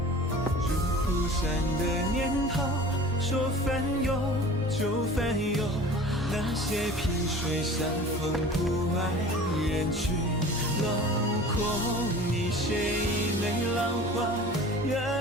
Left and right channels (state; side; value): normal; both; correlation 0.41